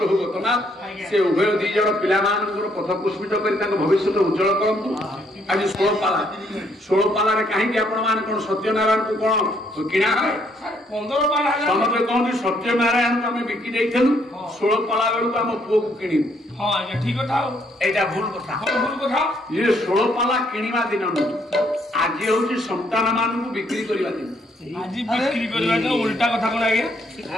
ଗତନାଥ ସେ ଉଭୟ ଦି ଜଣ ପିଲାମାନଙ୍କର ପଥ ପୁଷ୍ପିତ କରି ତାଙ୍କ ଭବିଷ୍ୟତ ଉଜ୍ଜଳ କରନ୍ତୁ। ଆଜି ଷୋଳପାଲାରେ କାହିଁକି ଆପଣ ମାନେ କଣ ସତ୍ୟନାରାୟଣକୁ କଣ କିଣା ହୁଏ? 15 ପାଲା ସମସ୍ତେ କହନ୍ତି ସତ୍ୟନାରାୟଣକୁ ଆମେ ବିକି ଦେଇଥିଲୁ, 16 ପାଲା ବେଳକୁ ଆମ ପୁଅକୁ କିଣିବୁ। ହଁ ଆଜ୍ଞା, ଠିକ କଥା। ଏଇଟା ଭୁଲ କଥା। ଭୁଲ କଥା। ଇଏ 16 ପାଲା କିଣିବା ଦିନ ନୁହେଁ, ଆଜି ହଉଛି ସନ୍ତାନ ମାନଙ୍କୁ ବିକ୍ରି କରିବା ଦିନ। ଆଜି ବିକ୍ରି କରିବା ଦିନ। ଉଲ୍ଟା କଥା କଣ ଆଜ୍ଞା?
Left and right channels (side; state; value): both; normal; correlation 0.70